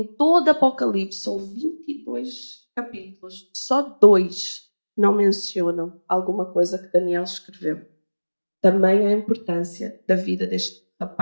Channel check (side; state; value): both; inverted; correlation -1.00